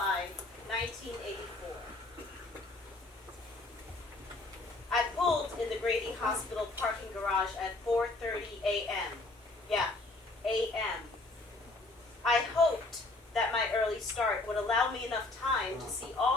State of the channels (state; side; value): quieter; right; 3.0 dB